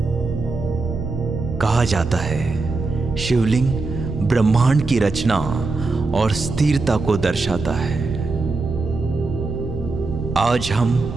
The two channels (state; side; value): quieter; left; 3.6 dB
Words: कहा जाता है शिवलिंग ब्रह्मांड की रचना और स्थिरता को दर्शाता है। आज हम